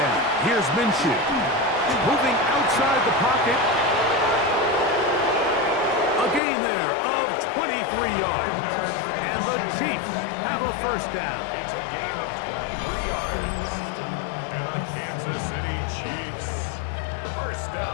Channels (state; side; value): drops out; right; at 6.4 s